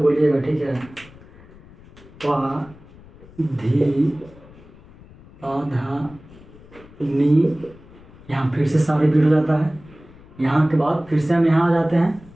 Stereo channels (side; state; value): left; noise; rumble, 22 dB below the sound